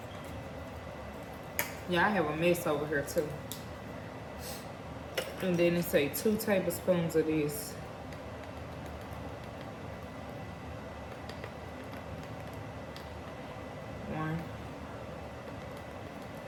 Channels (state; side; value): identical; both; correlation 1.00